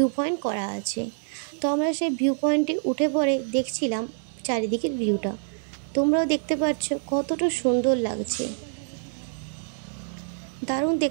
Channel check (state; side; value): silent; left; digital silence